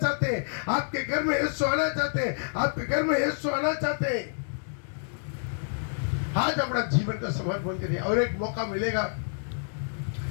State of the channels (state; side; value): silent; right; digital silence